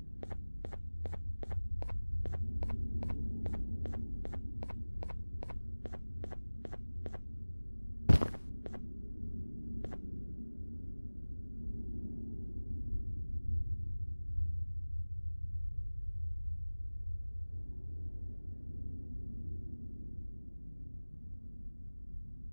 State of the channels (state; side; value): inverted; both; correlation -1.00